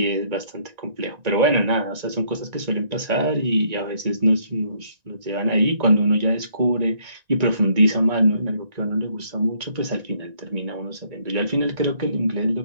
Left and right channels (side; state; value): left; late; 1.9 ms